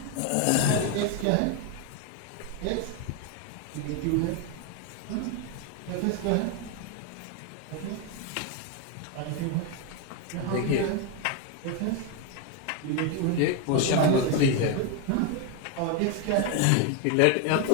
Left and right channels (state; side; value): different; both; correlation 0.01